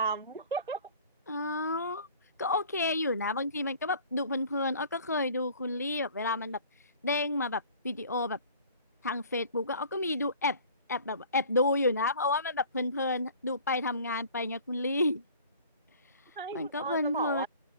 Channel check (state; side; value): inverted; both; correlation -0.48